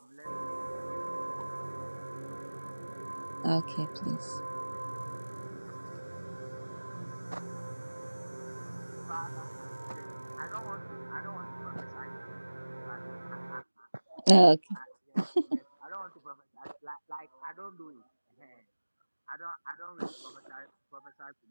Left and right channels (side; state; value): both; inverted; correlation -1.00